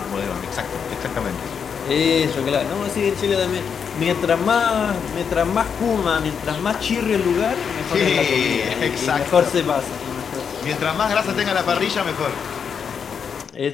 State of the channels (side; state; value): right; quieter; 6.8 dB